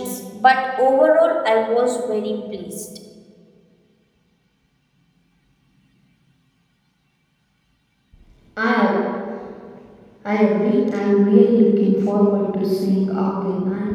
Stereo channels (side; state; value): both; identical; correlation 1.00